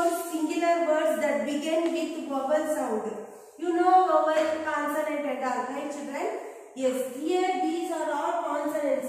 singular words that begin with vowel sound. You know vowel, consonant and all, right children? Yes, here these are all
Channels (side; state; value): both; identical; correlation 1.00